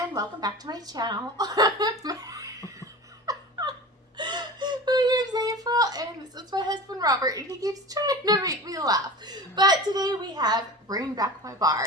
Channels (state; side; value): normal; both; correlation 0.34